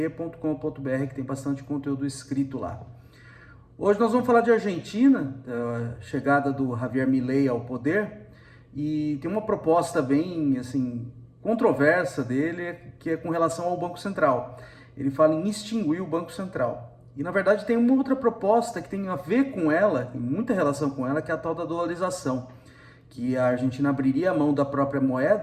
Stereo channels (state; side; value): identical; both; correlation 1.00